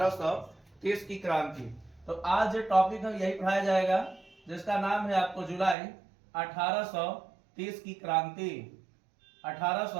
की क्रांति। तो आज जो टॉपिक है यही पढ़ाया जाएगा, जिसका नाम है आपको जुलाई 1830 की क्रांति,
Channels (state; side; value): drops out; left; at 5.8 s